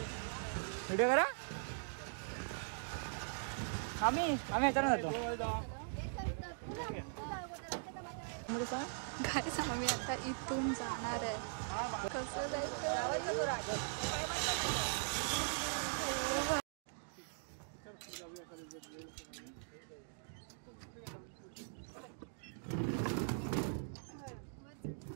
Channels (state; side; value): silent; left; digital silence